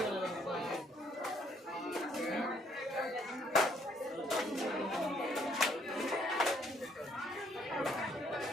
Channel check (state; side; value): normal; both; correlation 0.67